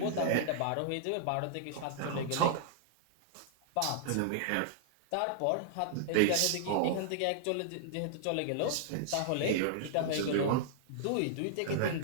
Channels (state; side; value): different; both; correlation -0.01